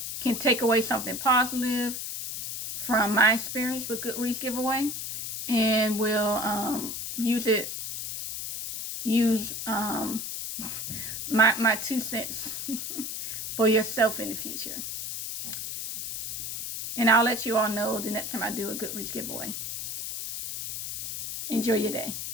can take away something positive from my experience with Goodreads giveaway, and will use my 2 cents for yourself in the future. And I'll let you all know the next time I do a Goodreads giveaway. Enjoy your day.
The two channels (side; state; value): left; noise; hiss, 6 dB below the sound